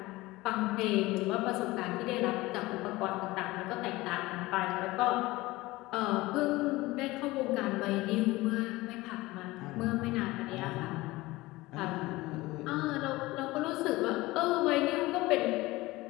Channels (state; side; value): quieter; right; 19.9 dB